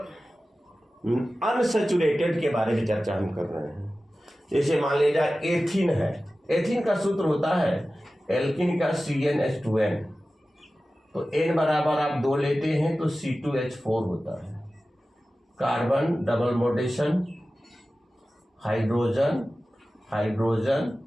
अनसेचुरेटेड के बारे में चर्चा हम कर रहे हैं। जैसे मान लीजिए एथीन है, एथीन का सूत्र होता है एल्किन का CnH2n, तो n बराबर आप 2 लेते हैं तो C2H4 होता है। Carbon double bondation, hydrogen hydrogen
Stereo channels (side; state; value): both; normal; correlation 0.95